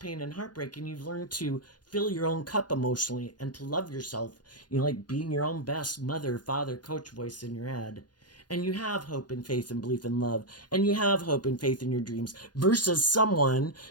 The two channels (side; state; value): right; late; 0.70 ms